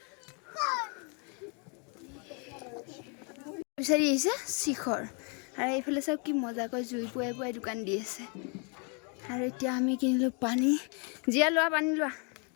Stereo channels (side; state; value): right; quieter; 36.0 dB